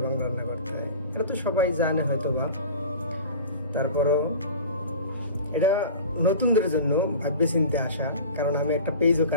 রান্না করতে হয়। এটা তো সবাই জানে হয়তো বা, তারপরও এটা নতুনদের জন্য ভাববে চিনতে আসা। কারণ আমি একটা পেজও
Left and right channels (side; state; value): both; inverted; correlation -0.37